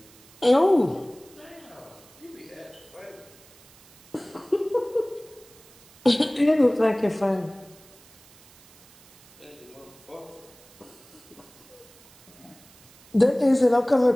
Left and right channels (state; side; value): noise; right; hiss, 25 dB below the sound